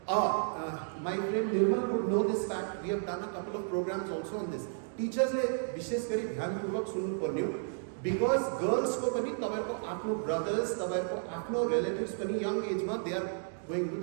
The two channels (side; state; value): left; silent; digital silence